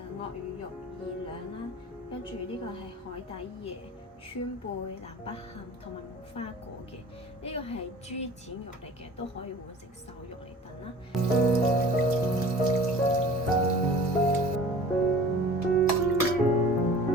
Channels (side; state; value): both; normal; correlation 0.44